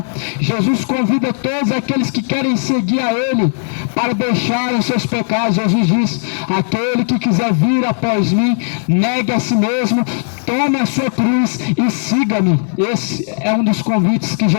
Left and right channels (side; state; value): right; silent; digital silence